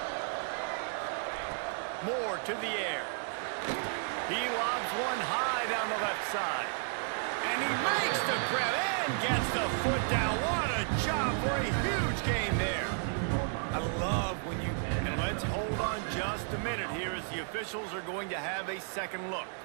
Moore to the air. He lobs one high down the left side. And he makes the grab and gets the foot down. What a job for a huge gain there. I love when you... And let's hold on just a minute here as the officials are going to have a second look.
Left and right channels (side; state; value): left; silent; 56 dB below the other